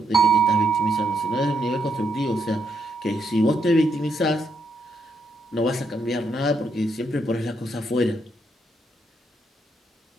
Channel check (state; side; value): normal; both; correlation 0.77